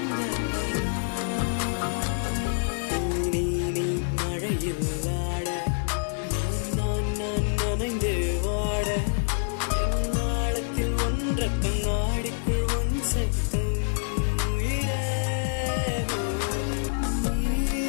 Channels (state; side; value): silent; right; digital silence